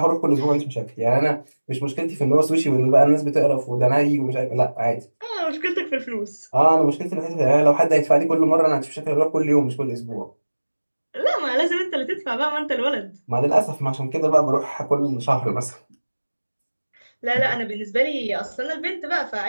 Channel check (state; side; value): inverted; both; correlation -1.00